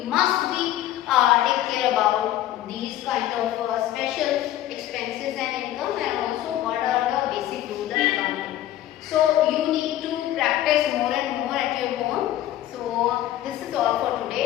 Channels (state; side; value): quieter; right; 13.1 dB